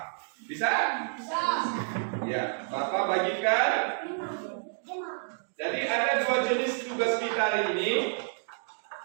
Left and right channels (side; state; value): left; silent; digital silence